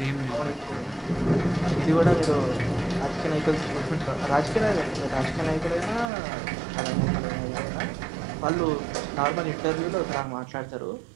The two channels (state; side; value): drops out; left; at 6.1 s